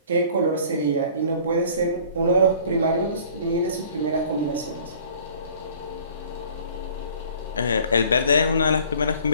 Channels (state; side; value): inverted; both; correlation -0.51